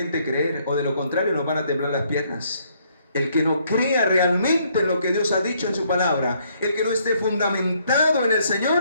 creer, o de lo contrario nos van a temblar las piernas. El que no crea realmente en lo que Dios ha dicho en su palabra, el que no esté fundamentado en el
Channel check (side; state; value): both; inverted; correlation -0.69